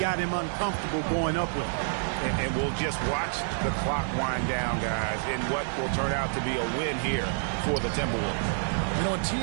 him uncomfortable going up with it. And we'll just watch the clock wind down, guys, in what will turn out to be a win here for the Timberwolves. You know, a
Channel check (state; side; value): silent; left; digital silence